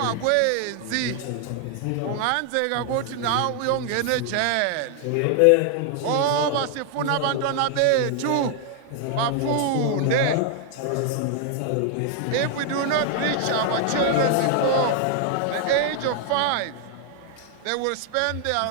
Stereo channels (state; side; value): different; both; correlation 0.00